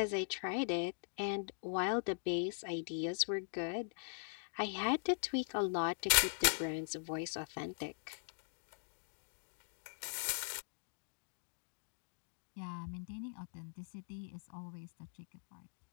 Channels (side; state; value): right; silent; digital silence